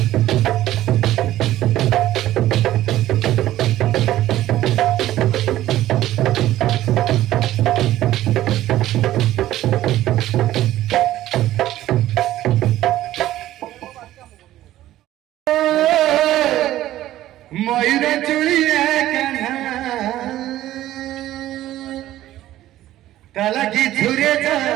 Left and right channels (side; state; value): left; quieter; 14.1 dB